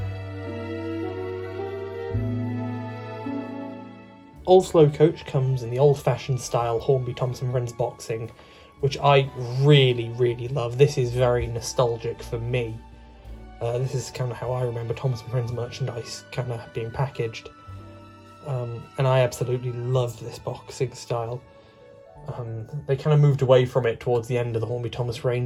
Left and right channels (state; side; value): identical; both; correlation 1.00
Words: Old Slow Coach comes in the old-fashioned style Hornby Thomas & Friends boxing, which I really love. This is very nostalgic for me. This is kind of how I remember Thomas & Friends merchandise kind of being packaged. And I absolutely love this boxing style. They kind of moved away from it towards the end of the Hornby Thomas